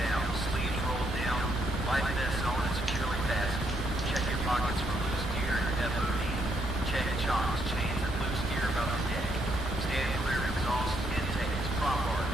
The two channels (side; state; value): both; normal; correlation 0.74